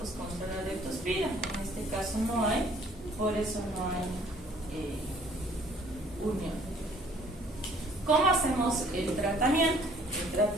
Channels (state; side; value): normal; both; correlation 0.58